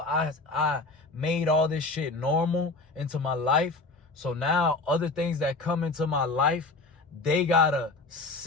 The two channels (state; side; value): quieter; right; 3.4 dB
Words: I made all this shit normal into my life. So now other things that come into my life, they gotta